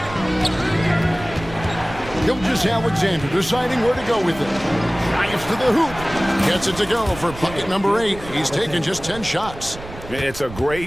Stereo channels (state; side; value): noise; right; rumble, 14 dB below the sound